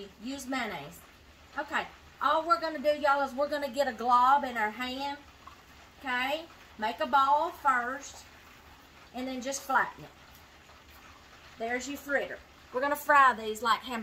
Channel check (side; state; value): both; identical; correlation 1.00